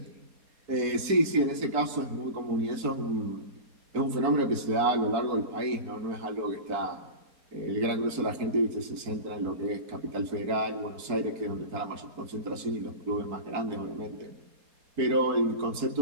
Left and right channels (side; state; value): left; late; 4.6 ms